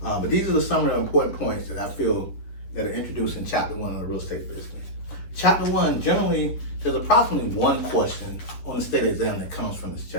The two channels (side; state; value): right; late; 10 ms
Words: But these are the summary of important points that I feel that are introduced in Chapter 1 of the real estate business. Chapter 1, generally, there's approximately one question on the state exam that comes from this